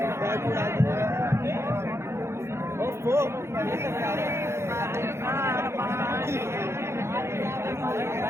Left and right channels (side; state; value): left; late; 0.13 ms